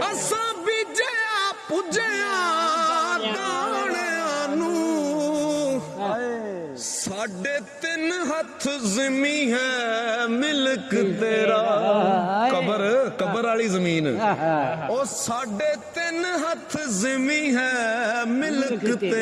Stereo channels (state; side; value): identical; both; correlation 1.00